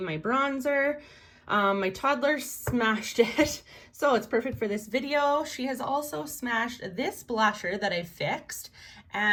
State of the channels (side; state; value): both; identical; correlation 1.00